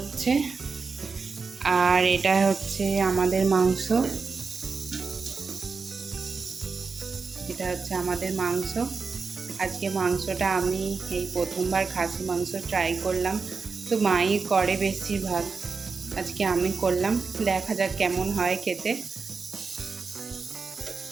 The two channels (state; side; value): quieter; left; 4.8 dB